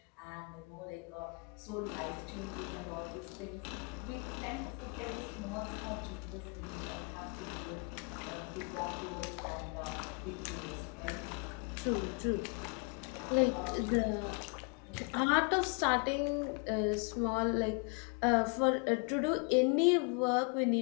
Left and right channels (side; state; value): right; quieter; 35.1 dB